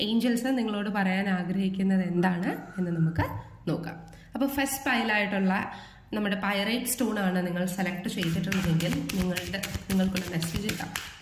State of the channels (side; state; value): both; identical; correlation 1.00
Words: ഏഞ്ചൽസ് നിങ്ങളോട് പറയാൻ ആഗ്രഹിക്കുന്നത് എന്താണ് എന്ന് നമുക്ക് നോക്കാം. അപ്പോൾ ഫസ്റ്റ് പൈലായിട്ടുള്ള നമ്മുടെ പൈറൈറ്റ് സ്റ്റോൺ ആണ് നിങ്ങൾ സെലക്ട് ചെയ്തിട്ടുണ്ടെങ്കിൽ നിങ്ങൾക്കുള്ള മെസ്സേജ് ഇടാം.